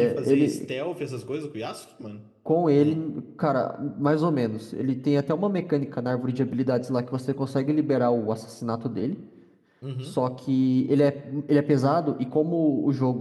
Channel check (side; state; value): both; identical; correlation 1.00